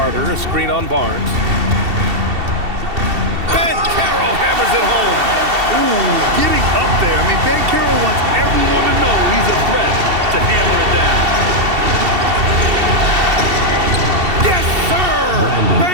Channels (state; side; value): late; left; 2.7 ms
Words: a screen on Barnes. Ben Carroll hammers it home. Ooh, getting up there. I mean, Ben Carroll wants everyone to know he's a threat to hammer it down. Yes, sir!